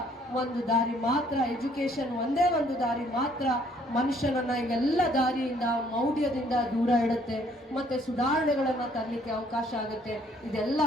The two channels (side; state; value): both; normal; correlation 0.63